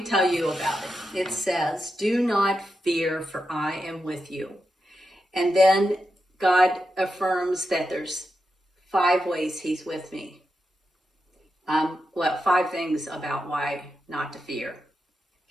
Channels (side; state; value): both; normal; correlation 0.88